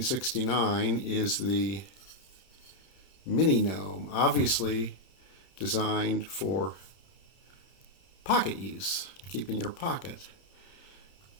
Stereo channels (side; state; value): right; late; 31 ms